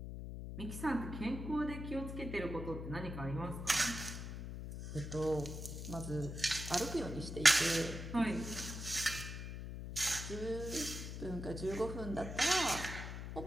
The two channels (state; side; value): noise; left; hum, 7 dB below the sound